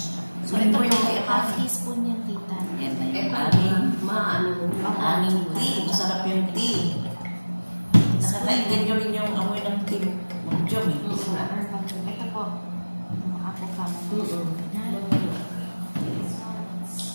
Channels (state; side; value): inverted; both; correlation -1.00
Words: So, ito yung half teaspoon yan, tita. Yan na yung aming tea. Masarap yung tea. Nakakainggan nyo rin yung amoy ng tea. Mag-jom eh. Ito po. Ako ka mo.